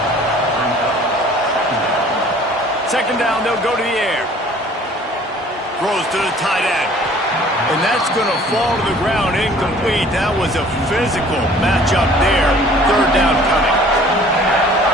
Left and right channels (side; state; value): both; normal; correlation 0.52